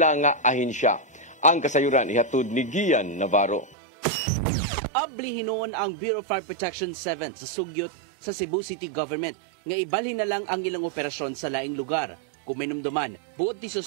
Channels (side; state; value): left; drops out; at 3.8 s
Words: nga ahensya. Ang kasayuran ihatod ni Gian Navarro. Abli hinuon ang Bureau of Fire Protection 7 sa sugyot sa Cebu City Government nga ibalhin na lang ang ilang operasyon sa laing lugar. Kuminumduman, buot ni